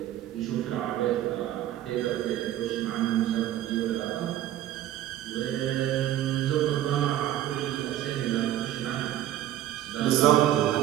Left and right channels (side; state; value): left; quieter; 12.7 dB